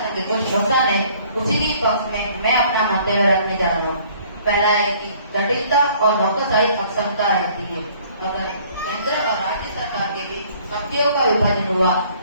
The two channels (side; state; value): both; inverted; correlation -0.57